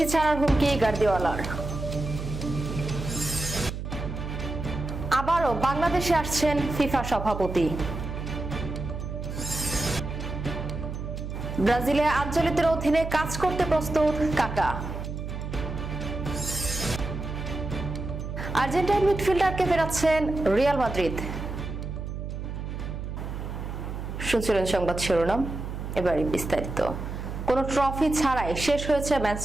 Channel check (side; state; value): right; noise; hum, 6 dB below the sound